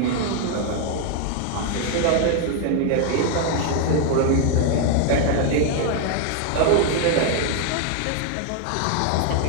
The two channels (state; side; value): different; both; correlation 0.00